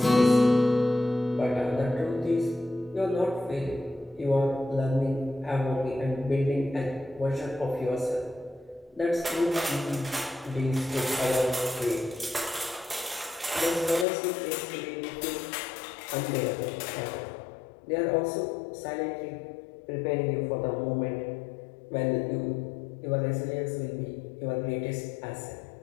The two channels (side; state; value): right; drops out; at 14.1 s